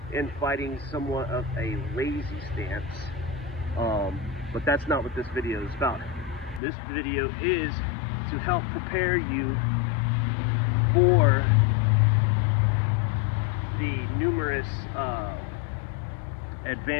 and fighting somewhat of a lazy stance. But that's not what this video is about. This video is to help prepare you for the numerous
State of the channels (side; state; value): right; drops out; at 6.6 s